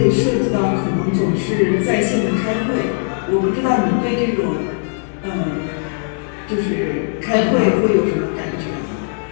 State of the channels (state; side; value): silent; right; 67 dB below the other